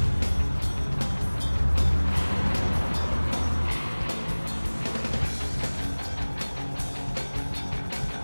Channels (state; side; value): inverted; both; correlation -1.00